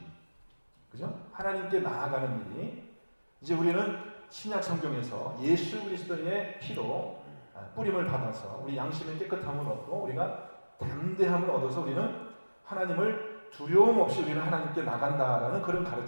그죠? 하나님께 나아가는 일이 이제 우리는 신약 성경에서 예수 그리스도의 피로 뿌림을 받아서 우리 양심의 깨끗함을 얻고 우리가 담대함을 얻어서 우리는 하나님을 두려움 없이 우리는 하나님께 나간다라는 그런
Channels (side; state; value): both; inverted; correlation -1.00